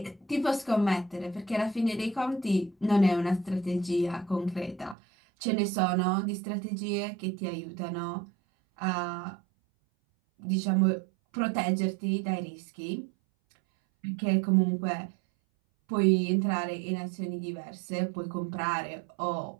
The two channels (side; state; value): left; drops out; at 5.0 s